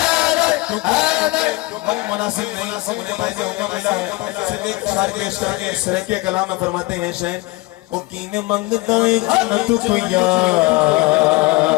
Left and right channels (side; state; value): right; quieter; 22.5 dB